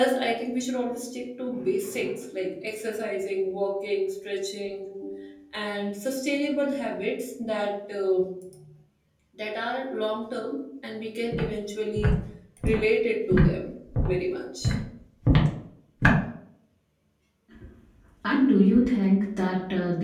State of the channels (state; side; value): identical; both; correlation 1.00